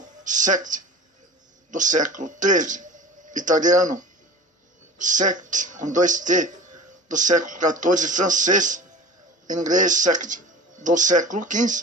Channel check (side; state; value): both; normal; correlation 0.37